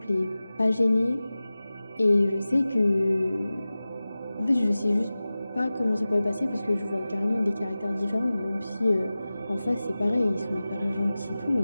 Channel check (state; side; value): inverted; both; correlation -0.97